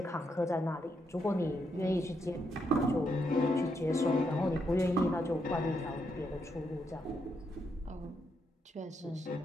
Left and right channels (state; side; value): normal; both; correlation 0.79